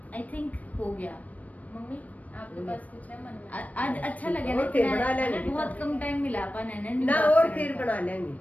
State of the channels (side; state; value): right; late; 0.071 ms